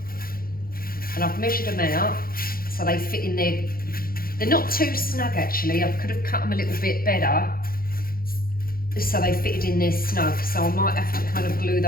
and I've measured them out so they fit in there. They're not too snug actually. I could have cut them a little bit better so they fitted in there snug. So I might have to kind of glue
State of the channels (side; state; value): right; late; 0.42 ms